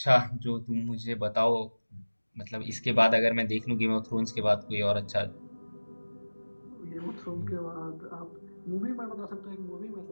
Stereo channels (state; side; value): inverted; both; correlation -1.00